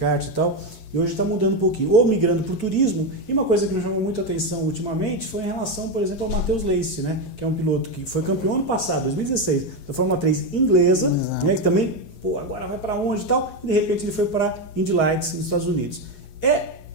e tal, e hoje está mudando um pouquinho, ou migrando para o turismo. E uma coisa que me chamou muito a atenção ultimamente foi em relação, por exemplo, ao Matheus Leist, né, que é um piloto que foi campeão ano passado, 2016, da Fórmula 3 inglesa, né, que também, agora vai para onde e tal, e de repente ele foi para Indy Lights nos Estados Unidos.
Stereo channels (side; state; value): right; late; 8.2 ms